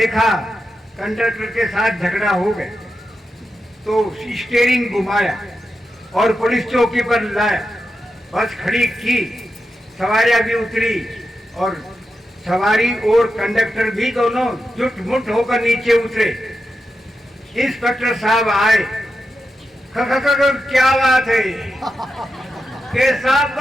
कंडक्टर के साथ झगड़ा हो गया तो स्टीयरिंग घुमाया और पुलिस चौकी पर लाया, बस खड़ी की, सवारियां भी उतरी और सवारी और कंडक्टर भी दोनों जुट मुट होकर नीचे उतरे। इंस्पेक्टर साहब आए, क्या बात है? के साहब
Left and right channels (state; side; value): normal; both; correlation 0.89